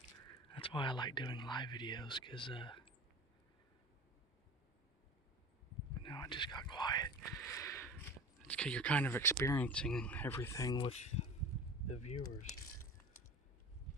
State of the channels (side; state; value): both; normal; correlation 0.35